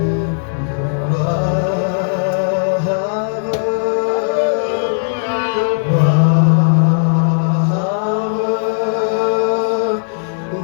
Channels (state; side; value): silent; right; 66 dB below the other